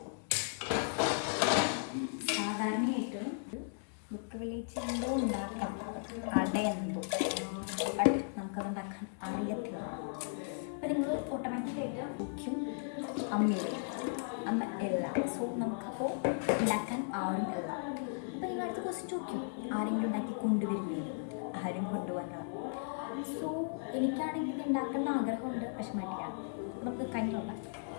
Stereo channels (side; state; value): right; silent; digital silence